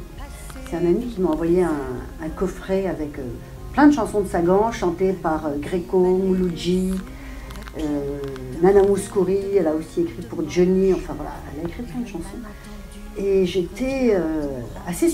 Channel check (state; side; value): identical; both; correlation 1.00